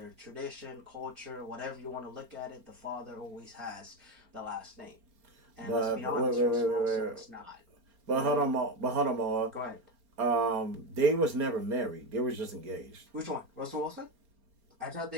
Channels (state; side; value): late; left; 4.3 ms